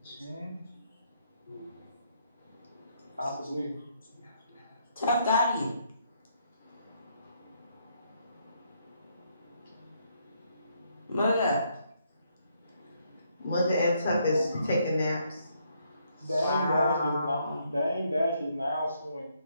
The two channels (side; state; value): both; inverted; correlation -0.73